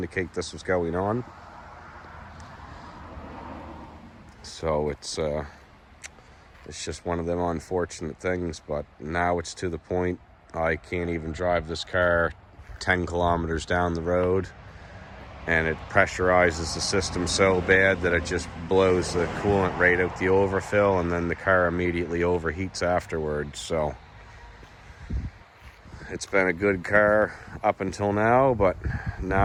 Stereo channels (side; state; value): both; identical; correlation 1.00